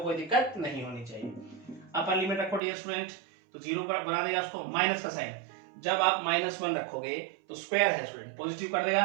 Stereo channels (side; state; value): left; drops out; at 2.6 s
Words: कोई दिक्कत नहीं होनी चाहिए। अपर लिमिट रखो डियर स्टूडेंट, तो 0 पर बना देगा उसको माइनस का साइन। जब आप -1 रखोगे तो स्क्वायर है स्टूडेंट, पॉजिटिव कर